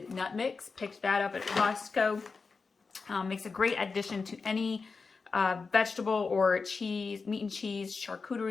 nut mix. Picked that up at Costco. Makes a great addition to any vegetable or cheese, meat and cheese,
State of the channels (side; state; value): right; quieter; 4.6 dB